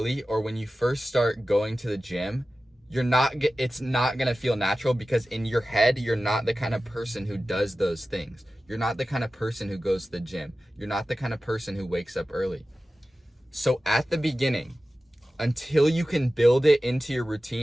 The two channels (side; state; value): both; normal; correlation 0.95